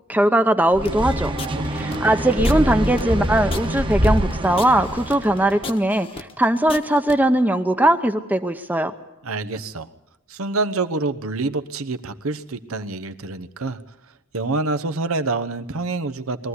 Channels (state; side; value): normal; both; correlation 0.74